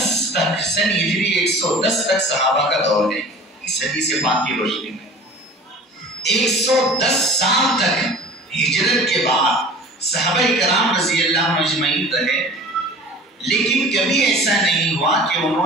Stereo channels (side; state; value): both; normal; correlation 0.43